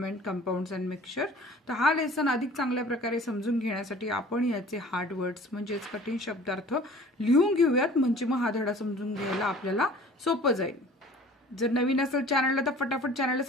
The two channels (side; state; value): both; normal; correlation 0.47